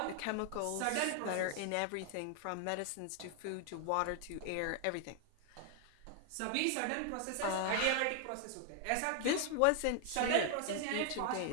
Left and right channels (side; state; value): both; different; correlation 0.00